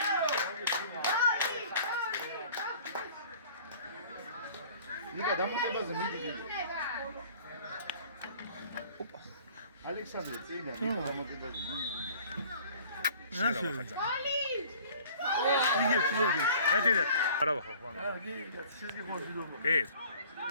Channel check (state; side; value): inverted; both; correlation -0.50